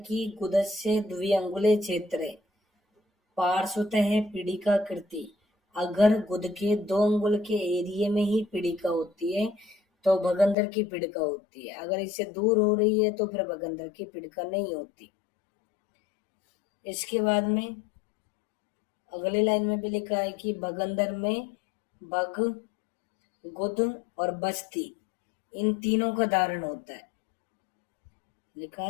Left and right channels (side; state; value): right; drops out; at 10.6 s